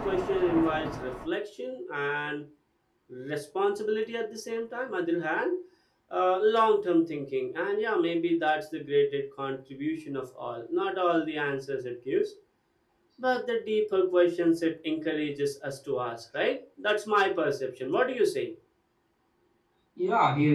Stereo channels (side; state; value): both; identical; correlation 1.00